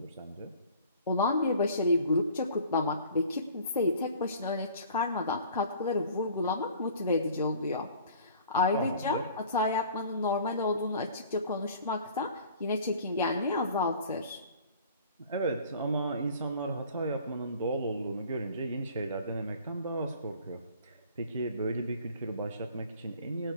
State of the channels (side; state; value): both; inverted; correlation -0.48